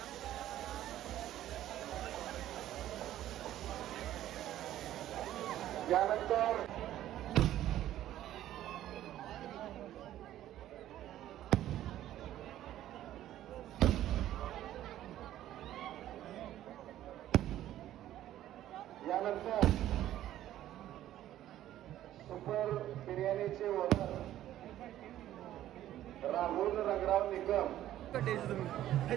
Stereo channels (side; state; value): left; quieter; 12.9 dB